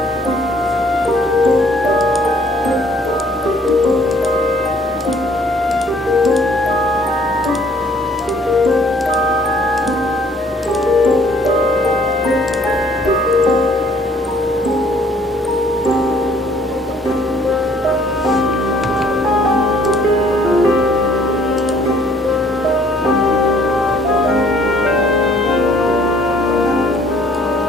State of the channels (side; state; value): both; normal; correlation 0.60